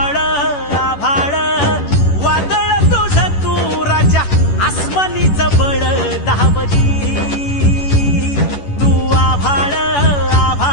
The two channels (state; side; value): late; right; 11 ms